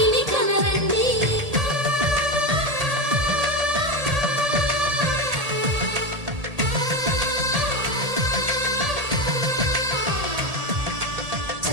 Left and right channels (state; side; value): late; left; 1.8 ms